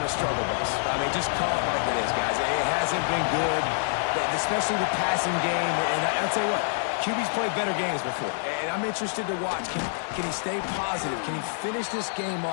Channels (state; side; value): silent; right; digital silence